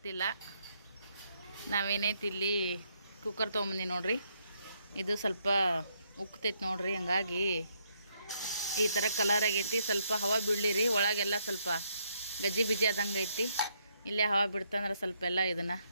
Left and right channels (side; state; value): both; inverted; correlation -0.74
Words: ನಾವೇನೈತಿ ಇಲ್ಲಿ ಕುಕ್ಕರ್ ತೊಗೊಂಬಂದಿ ನೋಡ್ರಿ. ಇದು ಸ್ವಲ್ಪ ಉಕ್ತೈತಿ ನೋಡ್ರಿ, ಹಂಗಾಗಿ ಈ ಥರ ಕಲರ್ ಆಗೈತಿ. ಸ್ವಲ್ಪ ಹವಾ ಬಿಡ್ಲಿರಿ, ಒಳಗೆಲ್ಲ ಸ್ವಲ್ಪ ಗಜ್ಜಿ ಬಿಜಿ ಆದಂಗೆ ಐತಿ. ಇಲ್ಲೇ ಹವಾ ಬಿಡ್ತಂದ್ರೆ ಸ್ವಲ್ಪ ಎಲ್ಲ ಇದನ್ನು